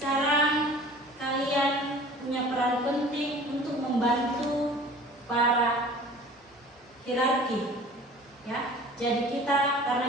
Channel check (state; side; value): normal; both; correlation 0.45